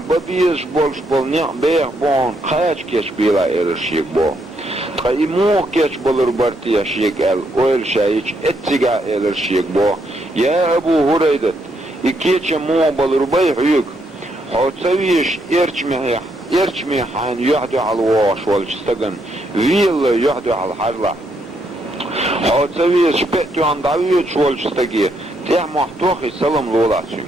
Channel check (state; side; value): normal; both; correlation 0.76